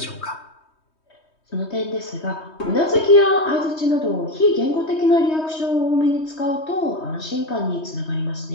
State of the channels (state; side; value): late; right; 3.2 ms